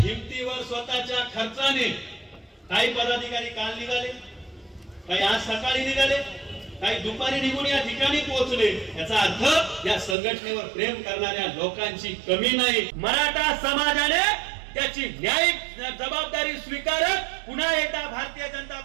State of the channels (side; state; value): left; drops out; at 10.2 s